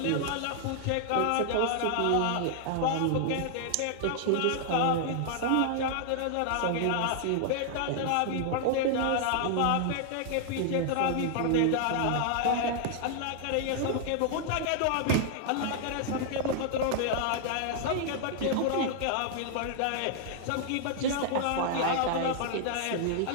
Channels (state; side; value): different; both; correlation 0.00